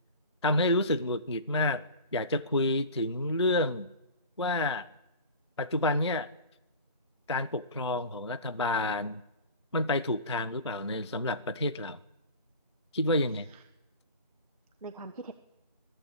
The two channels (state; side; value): inverted; both; correlation -0.34